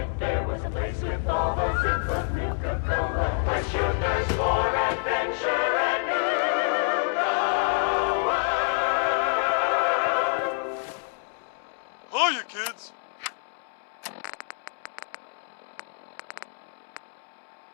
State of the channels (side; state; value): right; silent; digital silence